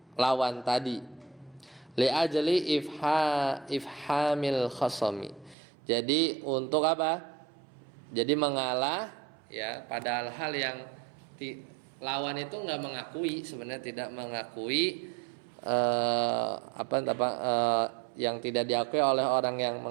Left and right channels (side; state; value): left; drops out; at 5.6 s